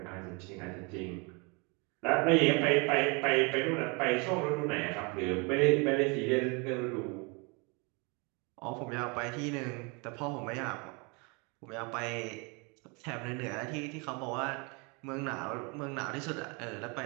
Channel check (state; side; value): quieter; left; 30.6 dB